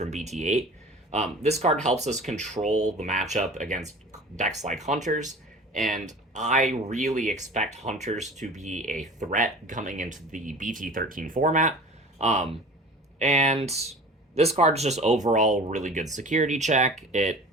BT8. This card helps us control the matchup against decks like Hunters, and I really expect Hunters to be a threat coming into the BT13 format. And this card is just overall really good security check. It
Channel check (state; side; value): normal; both; correlation 0.41